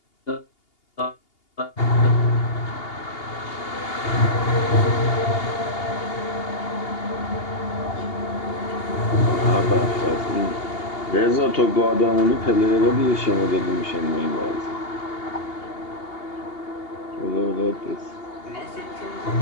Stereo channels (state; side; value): late; right; 2.8 ms